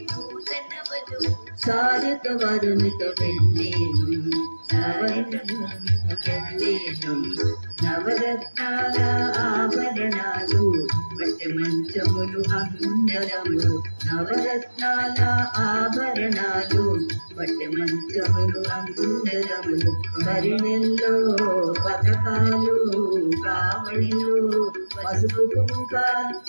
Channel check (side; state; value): both; inverted; correlation -1.00